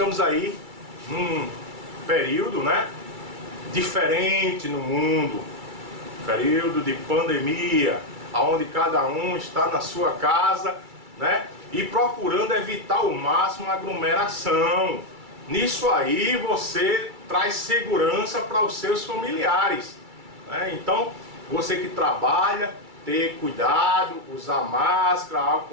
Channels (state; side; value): late; left; 2.3 ms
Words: aí num período, né, diferente no mundo, período de pandemia, onde cada um está na sua casa, né, e procurando evitar ao máximo a aglomeração. Nisso aí você traz segurança para os seus familiares, né? Então, você que trabalha, ter cuidado, usar máscara,